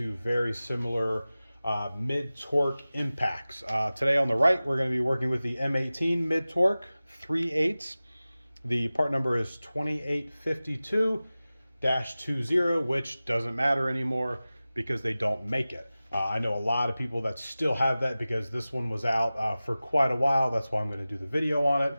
very similar mid-torque impacts. Today on the right, we're going to be working with the M18 mid-torque 3/8. The part number is 2852-20, which doesn't matter anymore because they don't make it. I know a lot of people that still have that because this one was out for quite a while. That's why I'm going to do the video on it.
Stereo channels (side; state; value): both; inverted; correlation -0.97